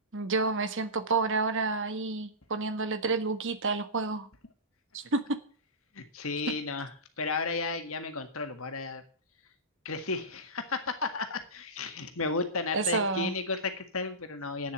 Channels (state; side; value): normal; both; correlation -0.18